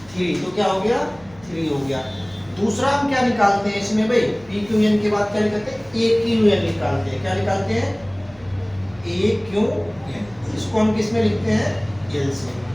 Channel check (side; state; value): right; noise; hum, 25 dB below the sound